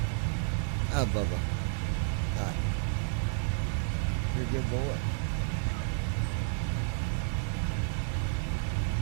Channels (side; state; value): left; silent; digital silence